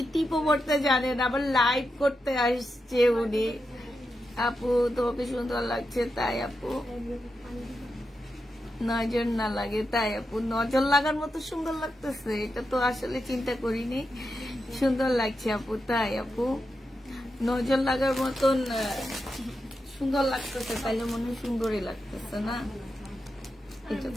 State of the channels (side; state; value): both; normal; correlation 0.87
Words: টিপও করতে জানে না, আবার লাইভ করতে আসছে উনি। আপু তোমাকে সুন্দর লাগছে, তাই আপু নজর না লাগে, তাই আপু নজর লাগার মতো সুন্দর লাগতেছে, এটা তো আসলে চিন্তা করিনি, সুন্দর লাগছে আপু, তাই আপু নজর লাগার মতন সুন্দর লাগতেছে, তাইলে মনে হয় সুন্দরই লাগতেছে না, এটা